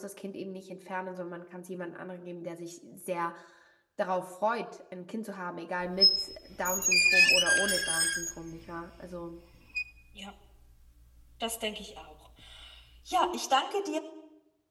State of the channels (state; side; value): identical; both; correlation 1.00